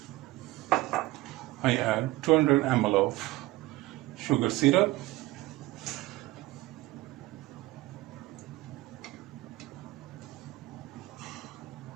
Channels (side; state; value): left; quieter; 18.5 dB